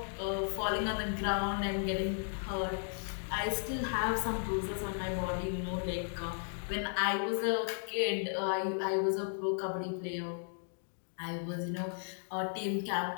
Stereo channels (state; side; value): silent; right; digital silence